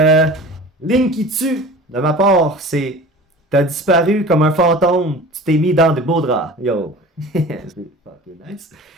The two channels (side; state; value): both; normal; correlation 0.39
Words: Ligne qui tue, de ma part, c'est t'as disparu comme un fantôme, tu t'es mis dans des beaux draps. Yo. C'est fucking nice.